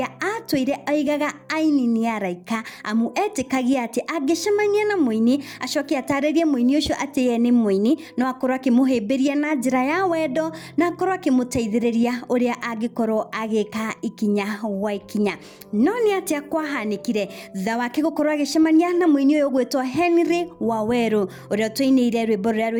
atũire aigaga aini nĩ araika amu etĩkagia atĩ angĩcemania na mũini acoke atarĩrie mũini ũcio atĩ ye nĩ mũini no akorwo akĩmũhĩmbĩria na njĩra ya wendo na akorwo akĩmũteithĩrĩria ũrĩa angĩkorwo agĩka ikinya wa ikinya. No nĩ atĩa kwahanĩkire thutha wake gũkorwo agĩcemania na mũini ũyũ ũgwĩtwo WAWERU ũrĩa tũinĩire rwĩmbo rũrĩa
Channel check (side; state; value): both; identical; correlation 1.00